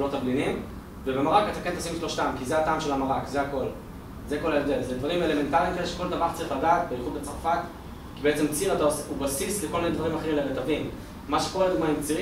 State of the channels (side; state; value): both; identical; correlation 1.00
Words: תבלינים, ובמרק אתה כן תשים שלושתם, כי זה הטעם של המרק, זה הכל. זה כל ההבדל. זה דברים אלמנטריים כאלה שכל טבח צריך לדעת, בייחוד בצרפת, כי בעצם ציר הוא בסיס לכל מיני דברים אחרים לרטבים. מה שקורה לדוגמה עם